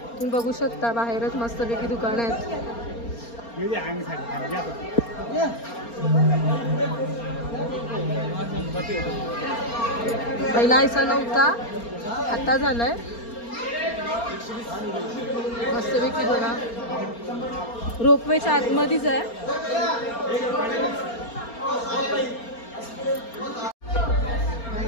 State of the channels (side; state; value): right; late; 4.3 ms